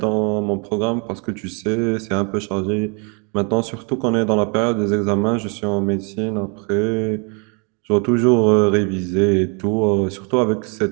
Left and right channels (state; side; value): quieter; left; 35.0 dB